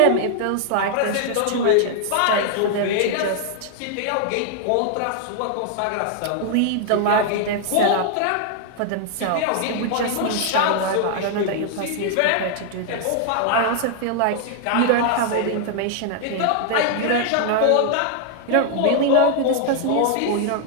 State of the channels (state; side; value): different; both; correlation 0.00